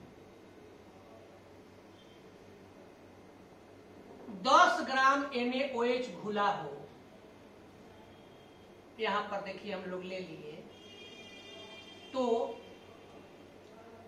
10 ग्राम NaOH घुला हो, यहां पर देखिए हम लोग ले लिए, तो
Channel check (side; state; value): both; identical; correlation 1.00